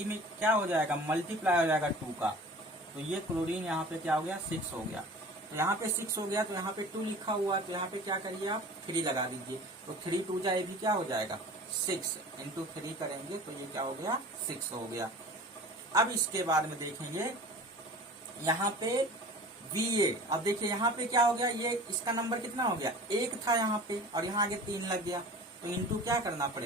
में क्या हो जाएगा, मल्टीप्लाई हो जाएगा 2 का, तो ये क्लोरीन यहाँ पे क्या हो गया, 6 हो गया। तो यहाँ पे 6 हो गया, तो यहाँ पे 2 लिखा हुआ है, तो यहाँ पे क्या करिए आप 3 लगा दीजिए, तो 3 × 2 = ये भी क्या हो जाएगा, 6 × 3 करेंगे तो ये क्या हो गया, 6 हो गया। अब इसके बाद में देखेंगे यहाँ पे Va। अब देखिए यहाँ पे क्या हो गया, ये इसका नंबर कितना हो गया, 1 था यहाँ पे और यहाँ आगे 3 लग गया, तो इनटू क्या करना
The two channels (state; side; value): normal; both; correlation 0.41